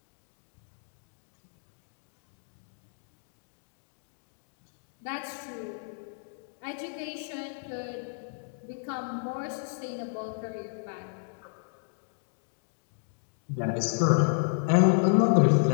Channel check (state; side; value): silent; right; digital silence